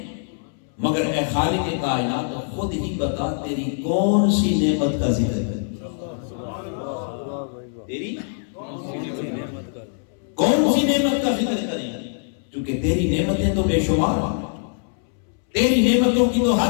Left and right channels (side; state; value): right; silent; 63 dB below the other